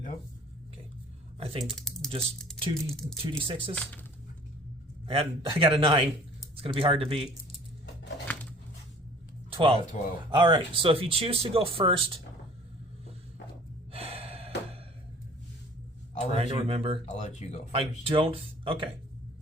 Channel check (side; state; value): both; normal; correlation 0.50